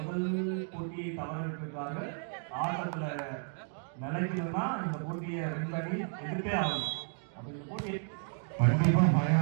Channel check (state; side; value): silent; left; 56 dB below the other